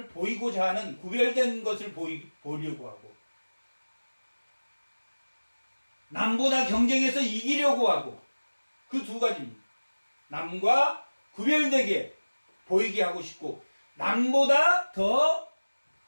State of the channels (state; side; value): inverted; both; correlation -1.00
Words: 보이고자 하는 구별된 것을 보려고 하고 남보다 경쟁해서 이기려고 하고 그 두 가지입니다. 남과 구별되게 보이게 하고 싶고 남보다 더